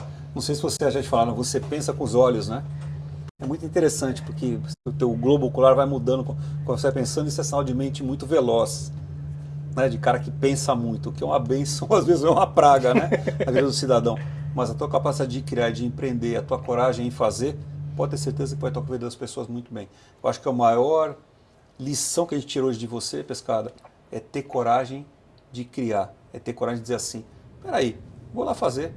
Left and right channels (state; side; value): identical; both; correlation 1.00